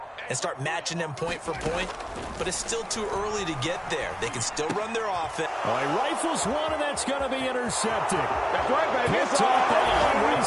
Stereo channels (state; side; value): identical; both; correlation 1.00